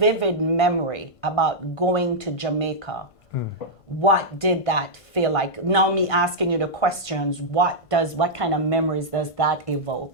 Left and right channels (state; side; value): late; right; 1.5 ms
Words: memory about going to Jamaica. What did that feel like? Now me asking you the questions, what kind of memories does that